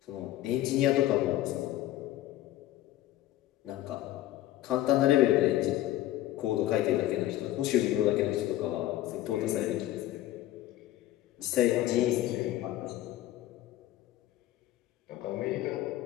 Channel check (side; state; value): right; quieter; 14.4 dB